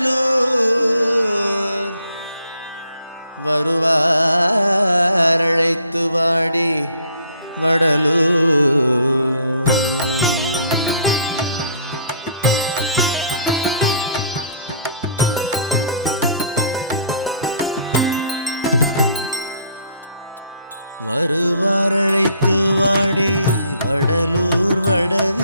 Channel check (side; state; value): both; inverted; correlation -0.60